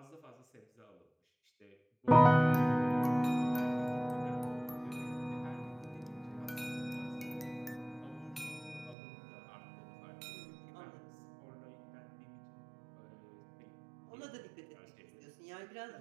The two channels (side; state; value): left; drops out; at 9.0 s